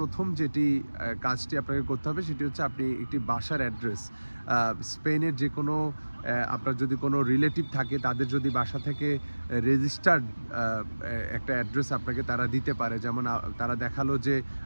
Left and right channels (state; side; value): inverted; both; correlation -1.00